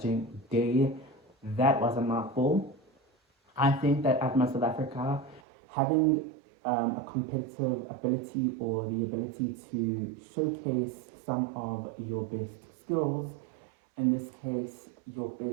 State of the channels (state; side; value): drops out; left; at 5.4 s